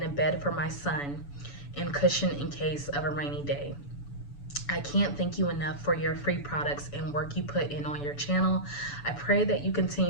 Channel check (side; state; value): right; late; 7.0 ms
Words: a bed for my son, and cushion in case of a rainy day. I can't thank you enough for your free products and work you put in on your channel. I pray that you